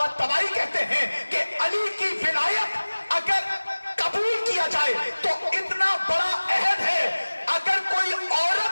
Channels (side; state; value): both; inverted; correlation -1.00